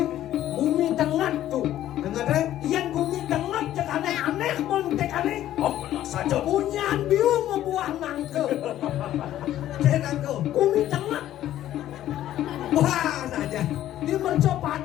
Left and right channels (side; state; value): right; quieter; 12.7 dB